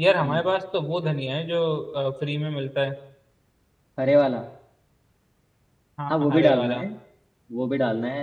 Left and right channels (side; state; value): both; identical; correlation 1.00